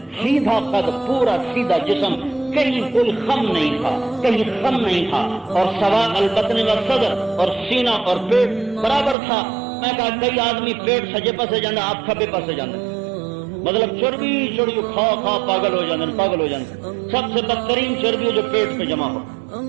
سیدھا قد، پورا سیدھا جسم، کہیں کوئی خم نہیں تھا، کہیں خم نہیں تھا، اور سواء البطن والصدر، اور سینہ اور پیٹ برابر تھا۔ میں کہا کئی آدمی پیٹ سجے پسے جاندے، آپ کھبے پسے جاندے، مطلب چربی چڑی کھا کھا پاگل ہو جاندے۔ سب سے بدترین چربی جو پیٹ پہ جمع ہو۔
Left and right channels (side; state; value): left; drops out; at 9.2 s